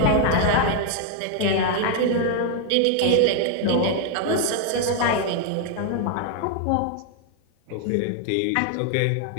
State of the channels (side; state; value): both; different; correlation 0.00